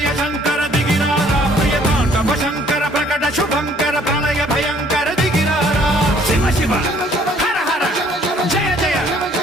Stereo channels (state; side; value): normal; both; correlation 0.60